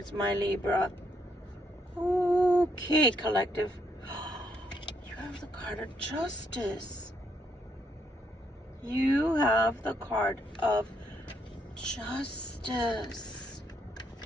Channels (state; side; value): normal; both; correlation 0.74